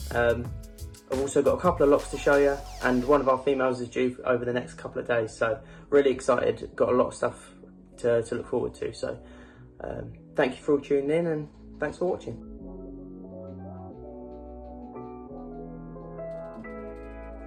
I've also got a couple of locks to show you, and one of our females is due over the next couple of days, so really excited, got a lot of stuff to look forward to. So thank you for all tuning in, and thanks for watching.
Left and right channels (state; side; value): identical; both; correlation 1.00